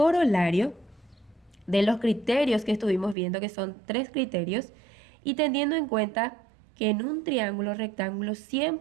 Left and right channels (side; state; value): left; drops out; at 3.2 s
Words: de los criterios que estuvimos viendo, que son 3 criterios, y teniendo en cuenta que en un triángulo rectángulo